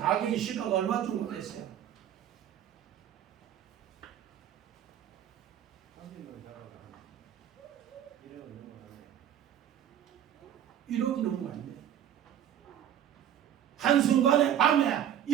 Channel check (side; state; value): left; quieter; 10.3 dB